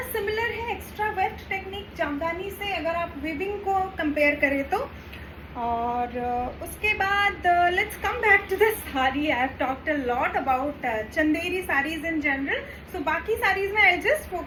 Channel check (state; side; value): identical; both; correlation 1.00